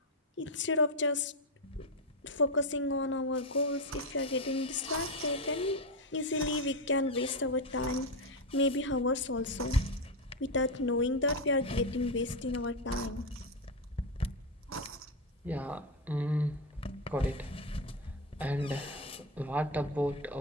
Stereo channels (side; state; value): both; normal; correlation 0.09